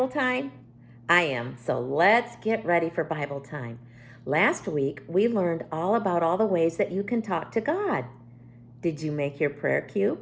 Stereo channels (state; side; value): identical; both; correlation 1.00